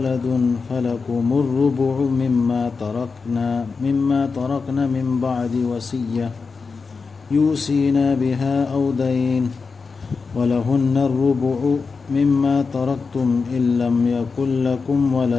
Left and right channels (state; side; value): quieter; right; 4.8 dB